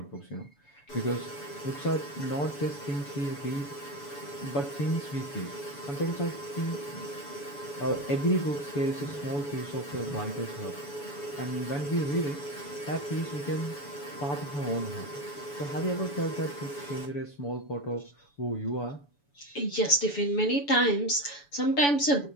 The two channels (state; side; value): late; right; 7.0 ms